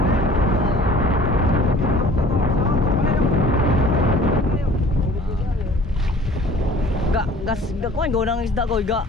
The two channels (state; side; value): normal; both; correlation 0.49